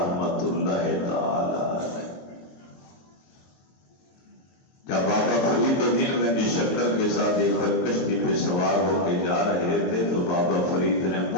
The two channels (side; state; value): right; late; 23 ms